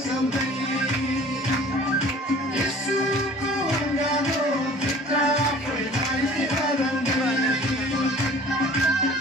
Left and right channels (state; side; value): normal; both; correlation 0.48